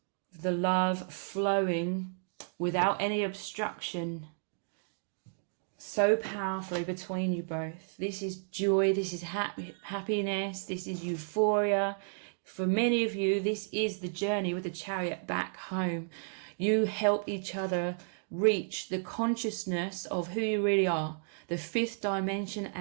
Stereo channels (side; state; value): left; silent; digital silence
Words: the love flowing without any obstruction, so powerfully between you both. This is joy, this is happiness, this is euphoria. For many of you, this is the journey with the chariot back home. You help each other reach the consciousness of who you really are, the fifth dimension